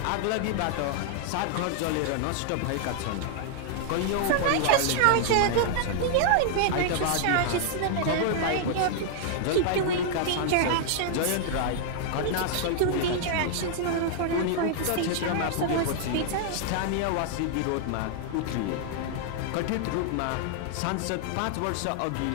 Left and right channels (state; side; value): different; both; correlation 0.00